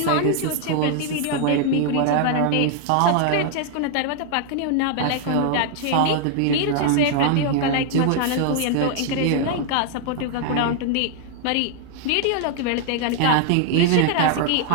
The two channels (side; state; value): both; different; correlation 0.00